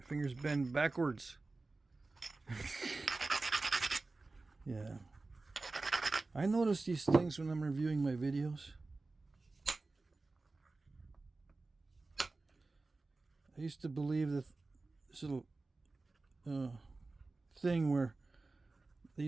fingers bend backwards. Yeah. I notice these things when I'm reviewing my videos. I used to believe that this little thing where they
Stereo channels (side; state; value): left; quieter; 3.5 dB